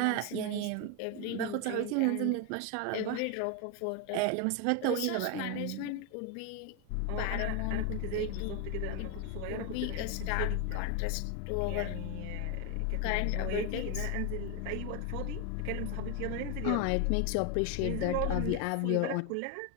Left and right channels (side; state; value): both; different; correlation 0.01